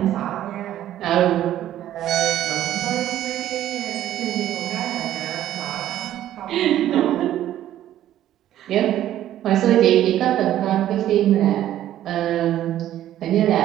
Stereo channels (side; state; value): left; quieter; 12.4 dB